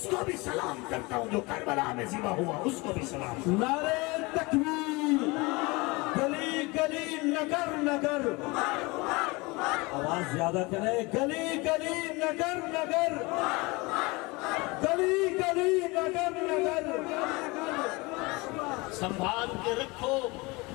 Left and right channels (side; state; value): right; quieter; 24.9 dB